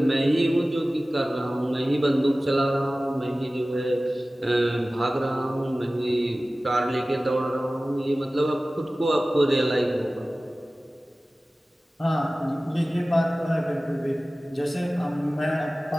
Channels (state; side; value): normal; both; correlation 0.97